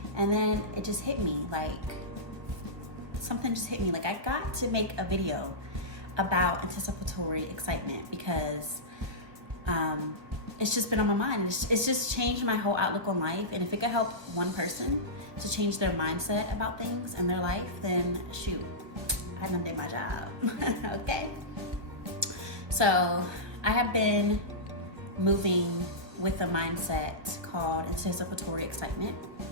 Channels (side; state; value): left; late; 1.2 ms